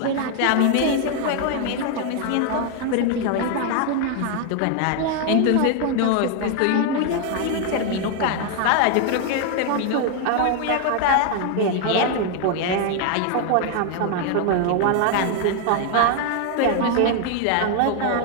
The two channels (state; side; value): different; both; correlation 0.00